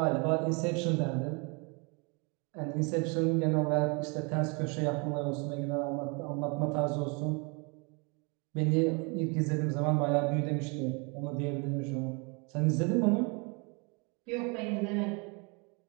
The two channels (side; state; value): left; quieter; 32.0 dB